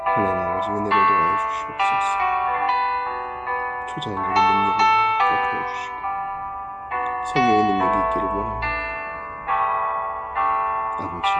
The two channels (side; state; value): both; identical; correlation 1.00